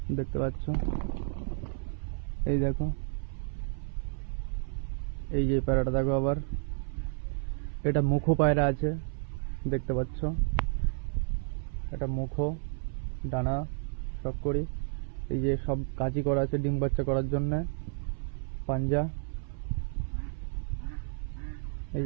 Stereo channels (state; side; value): silent; left; 57 dB below the other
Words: দেখতে পাচ্ছ। এই দেখো এই যে পায়রাটা দেখো আবার। এটা মুখো পায়রা আছে, দেখতে পাচ্ছ। এটা মুখো, ডানা সব করি। এই যে সব কাঁচি করা আছে ডিম বাচ্চা করার জন্য। পাঞ্জা, এই